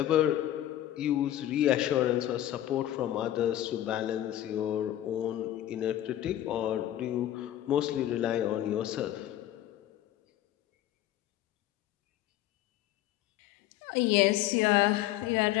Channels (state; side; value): quieter; right; 13.0 dB